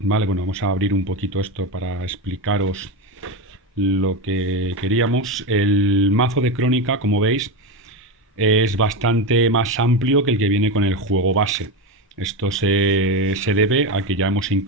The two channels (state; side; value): normal; both; correlation 0.16